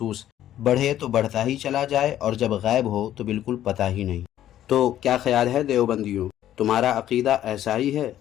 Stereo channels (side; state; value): right; quieter; 12.0 dB